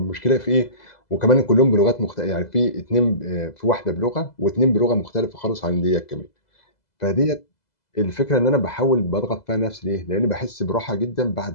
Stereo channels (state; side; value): late; right; 2.0 ms